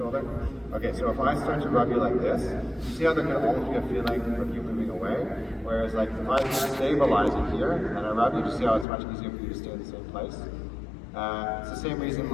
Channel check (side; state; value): right; drops out; at 8.8 s